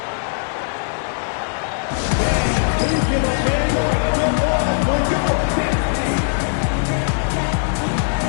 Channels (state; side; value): silent; right; digital silence